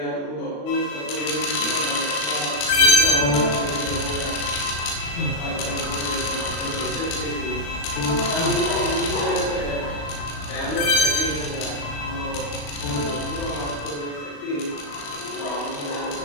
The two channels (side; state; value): right; late; 35 ms